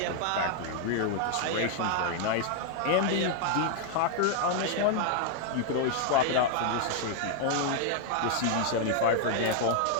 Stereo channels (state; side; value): different; both; correlation 0.00